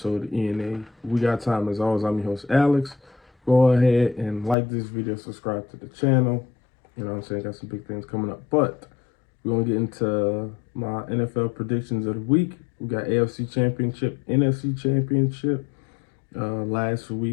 of ENA. We got time as always. I'm your host, Alex. Go ahead and like this video, subscribe to the channel. You know what I'm saying? Got some big things coming up. But we're going to get into my NFL predictions of the week. We got AFC Championship, NFC Championship. Last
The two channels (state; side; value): drops out; right; at 4.5 s